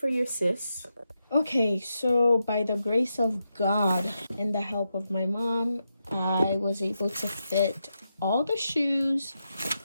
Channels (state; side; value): inverted; both; correlation -0.86